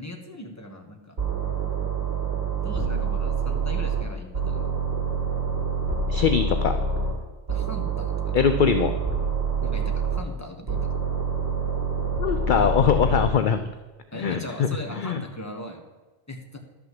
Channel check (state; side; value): normal; both; correlation 0.11